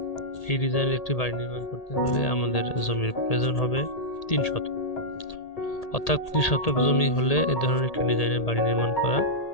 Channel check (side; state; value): right; late; 1.8 ms